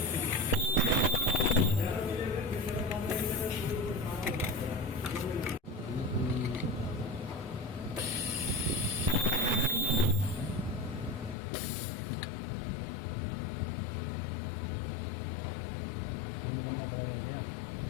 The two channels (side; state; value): right; drops out; at 11.4 s